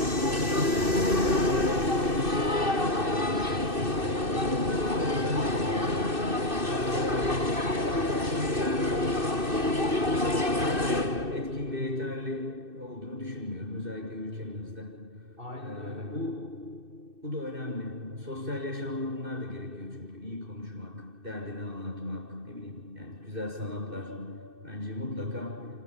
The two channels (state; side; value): late; left; 2.6 ms